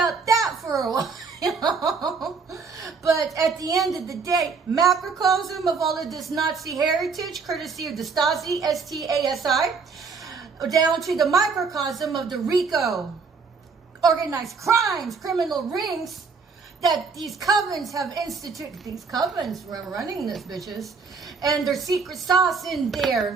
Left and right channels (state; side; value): quieter; left; 5.1 dB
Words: that for a while. But at the end of the day, macrocosm of all of this Nazi heritage, courtesy of the Stasi, S-T-A-S-I, down to the microcosm of the RICO, organized crimes, criminal rings, that these covens have instituted. These covens were running this, bitches. And their secret sauce in